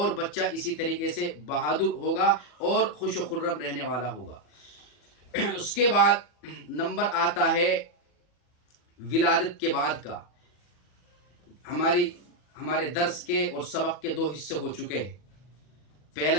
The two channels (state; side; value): late; right; 40 ms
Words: بچہ اسی طریقے سے بہادر ہوگا اور خوش و خرم رہنے والا ہوگا۔ اس کے بعد نمبر آتا ہے ولادت کے بعد کا۔ ہمارے درس کے اور سبق کے 2 حصے ہو چکے ہیں۔ پہلا